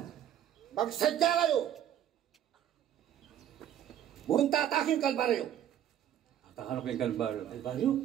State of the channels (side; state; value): left; quieter; 10.7 dB